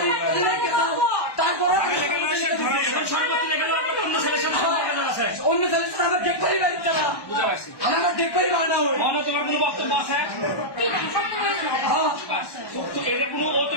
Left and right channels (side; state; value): right; late; 1.1 ms